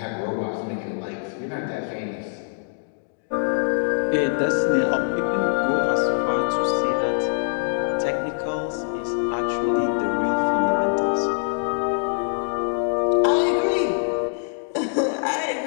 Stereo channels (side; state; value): right; silent; digital silence